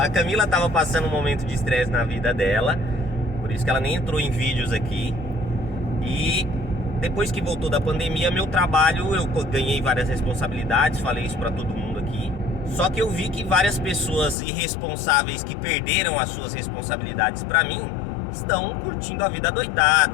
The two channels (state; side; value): drops out; right; at 14.4 s